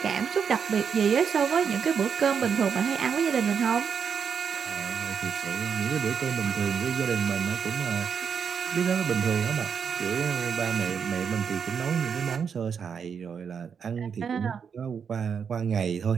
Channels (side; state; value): left; quieter; 6.8 dB